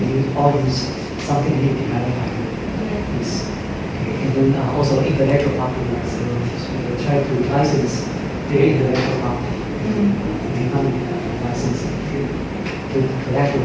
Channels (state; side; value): identical; both; correlation 1.00